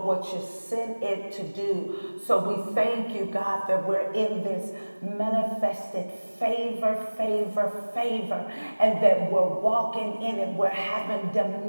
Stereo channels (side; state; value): both; inverted; correlation -1.00